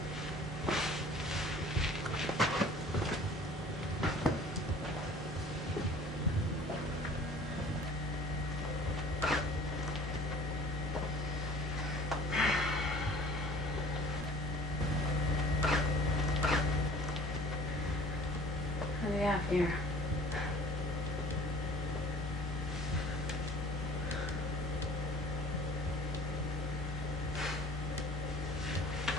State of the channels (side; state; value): right; noise; hum, 16 dB below the sound